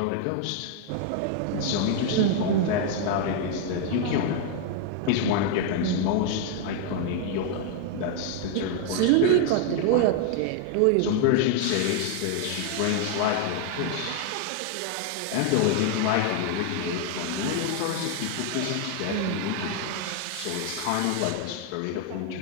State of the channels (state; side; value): different; both; correlation 0.00